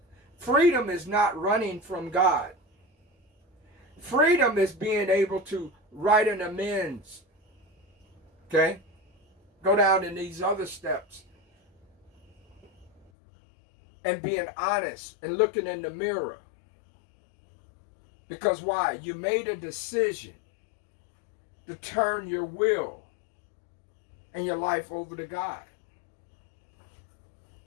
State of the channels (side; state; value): right; drops out; at 13.1 s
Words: Freedom is not running from God. Freedom is being able to write an amends. Okay? Go down in these other steps. And being honest and looking in the mirror. Because why? You made a decision to turn your will and your life over to God.